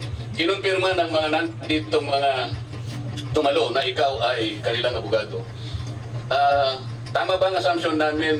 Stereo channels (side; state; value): both; identical; correlation 1.00